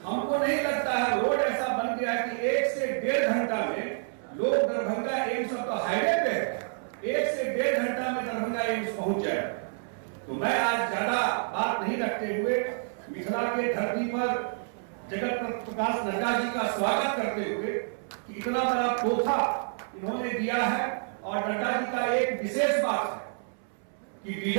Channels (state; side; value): silent; left; 59 dB below the other